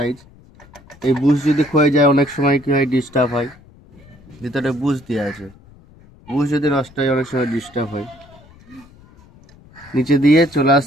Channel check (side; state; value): left; noise; rumble, 25 dB below the sound